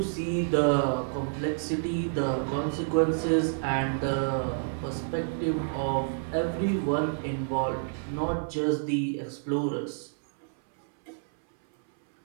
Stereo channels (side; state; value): left; silent; 59 dB below the other